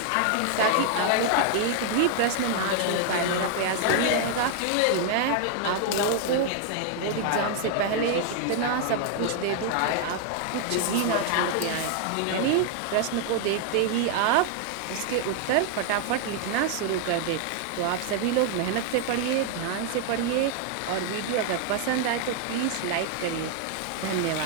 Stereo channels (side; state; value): both; different; correlation 0.00